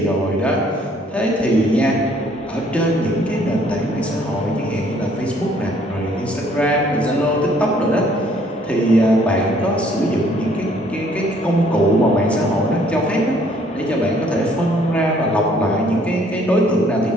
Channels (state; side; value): normal; both; correlation 0.62